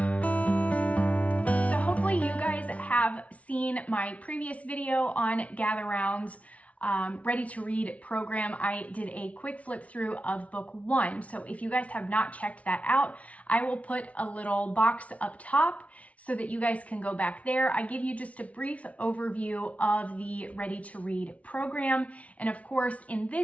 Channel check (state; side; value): late; right; 0.066 ms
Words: So hopefully you guys have seen my previous video on Gather Round's Ready to Read program. I did a quick flip through of book 1. So if you guys have not checked that out, I will put a little box up top so that you guys can go back there. I give you just a brief overview of the Ready to Read program. And of course, in